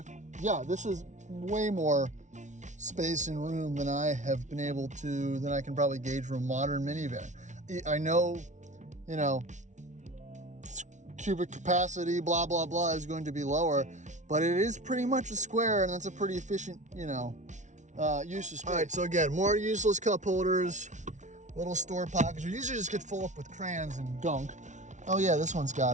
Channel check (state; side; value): late; left; 0.35 ms